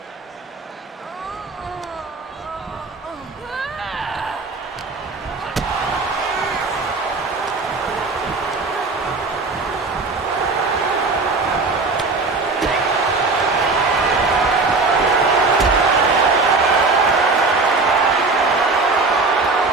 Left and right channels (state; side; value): quieter; left; 3.8 dB